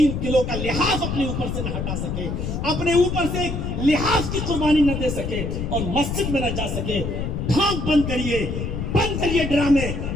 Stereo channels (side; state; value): left; noise; rumble, 3 dB below the sound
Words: کلو کا لحاف اپنے اوپر سے نہ ہٹا سکے, اپنے اوپر سے ایک لحاف کی قربانی نہ دے سکے, اور مسجد میں نہ جا سکے. ڈھانک بند کریے ڈرامے,